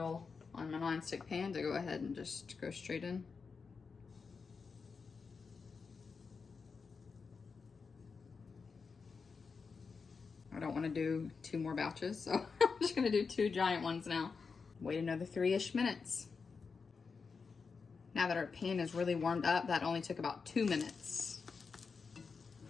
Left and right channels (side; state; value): right; quieter; 5.1 dB